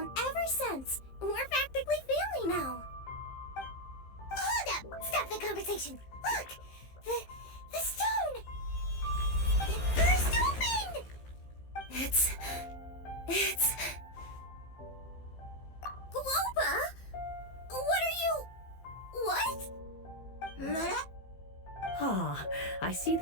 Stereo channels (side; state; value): right; late; 15 ms